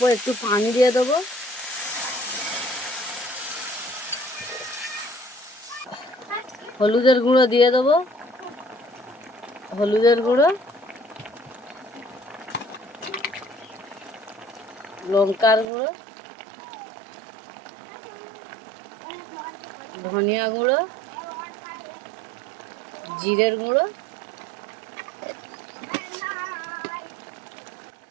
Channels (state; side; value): drops out; left; at 15.7 s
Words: একটু পানি দিয়ে দেবো। হলুদের গুঁড়ো দিয়ে দেবো, হলুদের গুঁড়ো, লঙ্কার গুঁড়ো, ধনিয়া গুঁড়ো, জিরের গুঁড়ো,